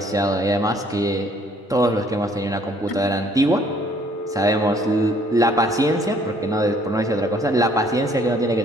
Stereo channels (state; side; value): normal; both; correlation 0.61